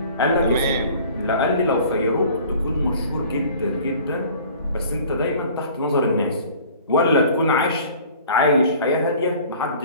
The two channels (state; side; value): inverted; both; correlation -0.48